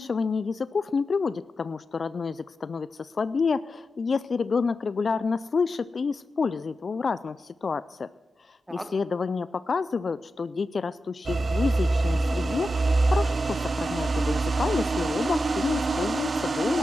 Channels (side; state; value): both; normal; correlation 0.90